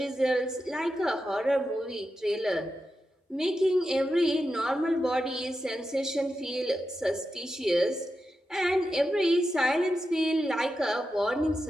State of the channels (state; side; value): normal; both; correlation 0.89